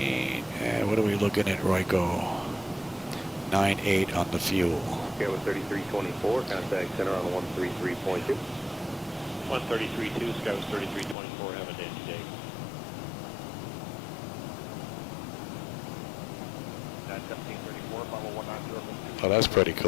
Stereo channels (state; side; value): drops out; right; at 11.2 s